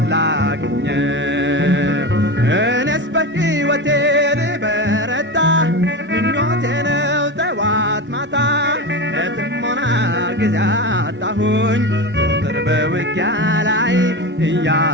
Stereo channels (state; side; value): normal; both; correlation 0.23